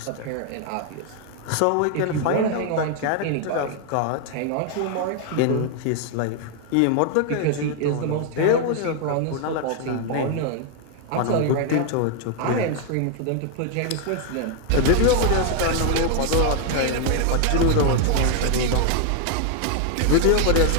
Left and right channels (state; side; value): different; both; correlation 0.00